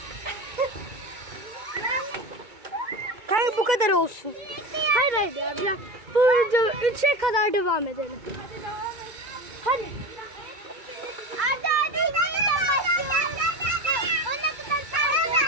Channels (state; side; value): late; left; 2.2 ms